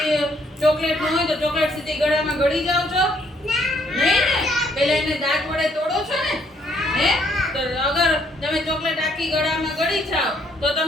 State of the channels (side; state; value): both; normal; correlation 0.68